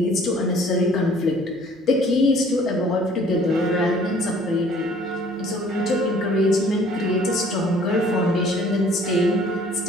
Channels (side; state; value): both; normal; correlation 0.55